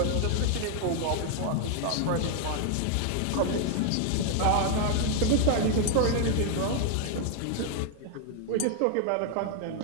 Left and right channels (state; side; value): different; both; correlation 0.00